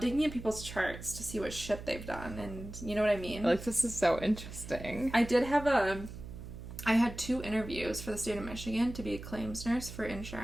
in people's charts to see what shit they've done, and you know what I mean? Like, this is so interesting. I had 2 interviews for the state of Michigan to be a claims nurse for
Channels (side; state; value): right; noise; hum, 11 dB below the sound